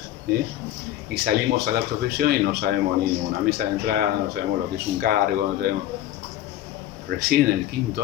¿eh? Y salimos a la profesión y no sabemos ni una mesa de entrada, no sabemos lo que es un cargo, no sabemos. Recién en el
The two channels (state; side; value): quieter; right; 13.0 dB